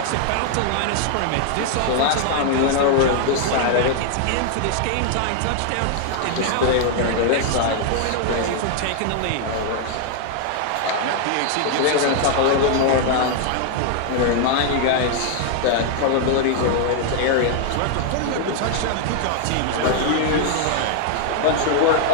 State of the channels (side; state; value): both; different; correlation 0.00